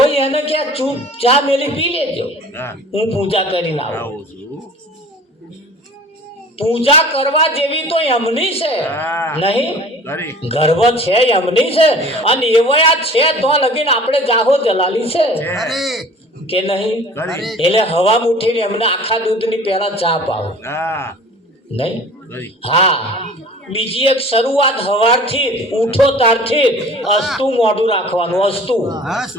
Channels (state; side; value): normal; both; correlation 0.45